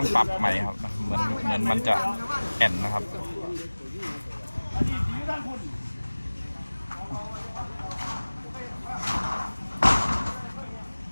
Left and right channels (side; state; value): both; inverted; correlation -1.00